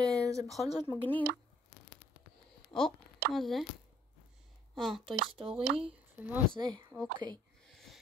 זה בכל זאת מגניב. מה זה? טוי סטורי, ומה זה? אוקיי.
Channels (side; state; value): both; normal; correlation 0.62